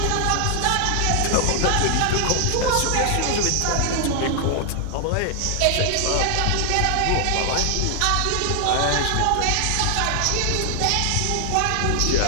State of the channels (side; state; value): both; different; correlation 0.00